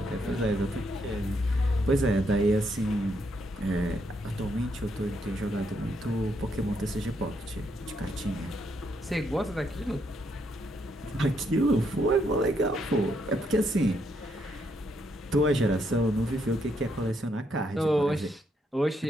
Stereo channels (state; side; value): normal; both; correlation 0.76